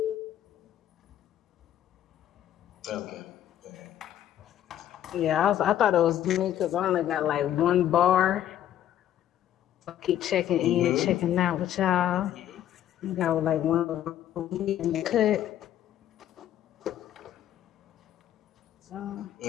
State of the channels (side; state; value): right; quieter; 11.5 dB